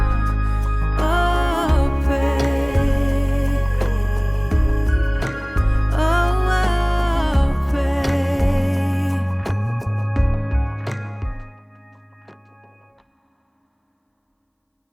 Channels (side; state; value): both; identical; correlation 1.00